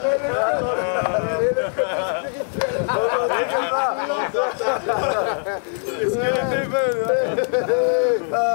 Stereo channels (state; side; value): silent; right; 55 dB below the other